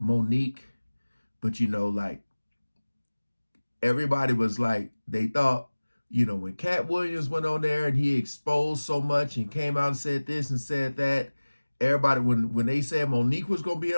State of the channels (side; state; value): both; inverted; correlation -1.00